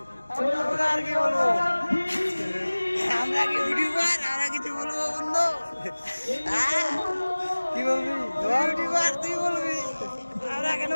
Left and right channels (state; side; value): inverted; both; correlation -1.00